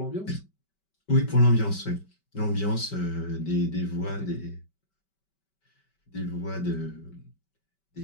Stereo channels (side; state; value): right; late; 5.2 ms